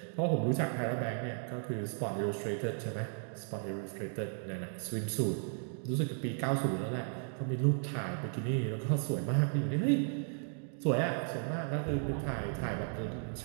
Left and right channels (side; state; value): left; silent; 54 dB below the other